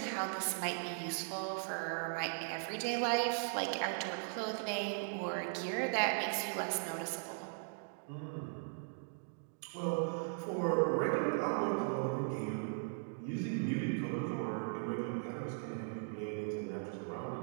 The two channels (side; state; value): left; silent; digital silence